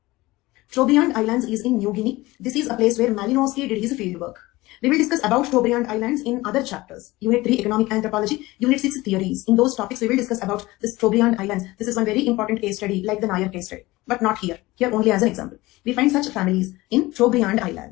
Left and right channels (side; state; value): right; quieter; 19.8 dB